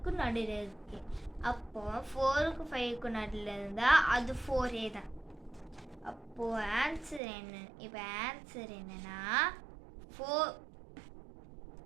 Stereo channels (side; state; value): left; drops out; at 7.2 s